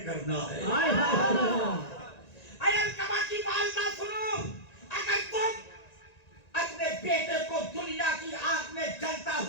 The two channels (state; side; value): late; right; 1.9 ms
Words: کرنا ہے. اے علقمہ کی والدہ سنو, اگر تم اپنے بیٹے کو دنیا کی آگ میں جلتا